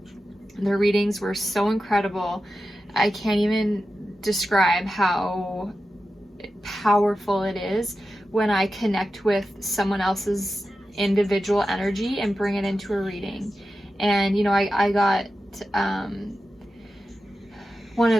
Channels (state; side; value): normal; both; correlation 0.92